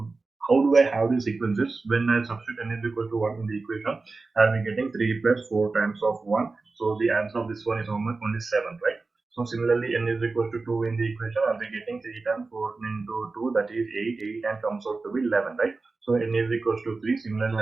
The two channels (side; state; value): left; quieter; 3.8 dB